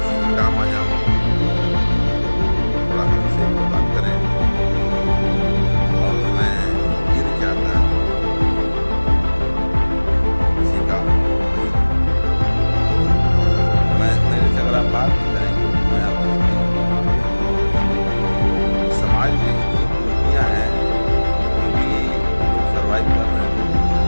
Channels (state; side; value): inverted; both; correlation -1.00